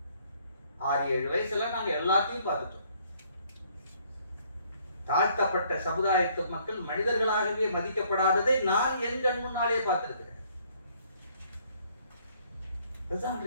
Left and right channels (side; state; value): both; inverted; correlation -0.64